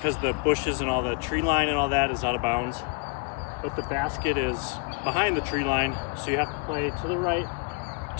the bushes and all the tree line and all that is out of bounds. But the basket is behind the tree line, so you have to play to the right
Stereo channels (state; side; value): quieter; right; 34.6 dB